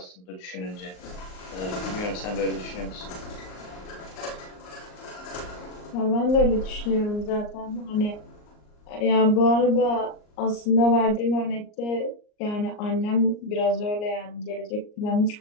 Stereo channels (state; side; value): late; right; 38 ms